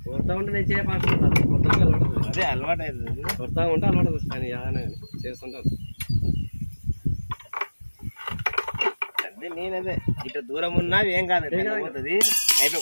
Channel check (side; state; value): both; inverted; correlation -1.00